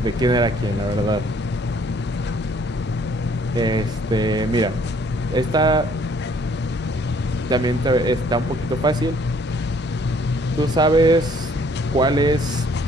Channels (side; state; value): both; normal; correlation 0.62